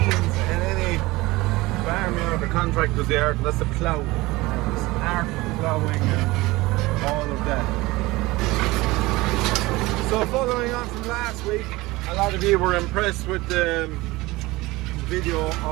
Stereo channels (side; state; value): left; quieter; 20.6 dB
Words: in any farmyard or contractor's yard, and that's the plough. This art of ploughing and all of that. So following on from last week, a lot of you were impressed with the video